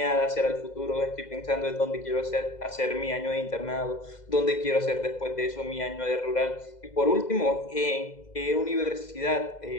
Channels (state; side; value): late; right; 2.0 ms